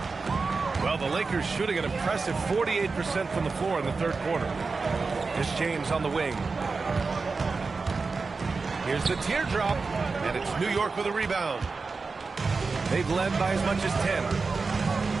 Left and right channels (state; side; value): quieter; left; 4.3 dB